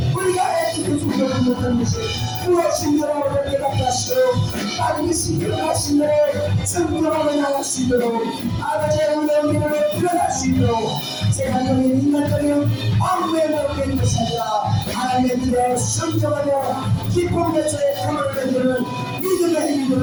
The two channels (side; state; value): both; identical; correlation 1.00